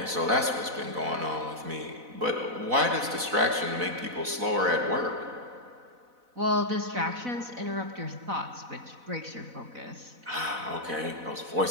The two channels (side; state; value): left; late; 4.0 ms